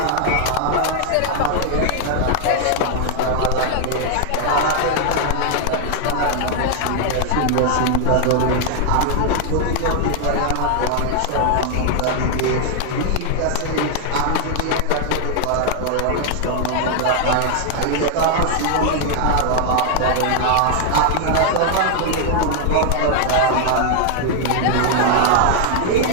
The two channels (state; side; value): different; both; correlation 0.00